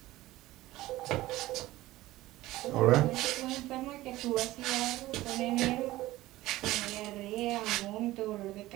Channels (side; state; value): left; quieter; 17.1 dB